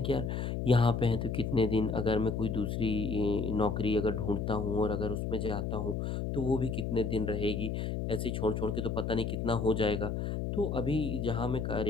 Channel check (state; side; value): noise; left; hum, 2 dB below the sound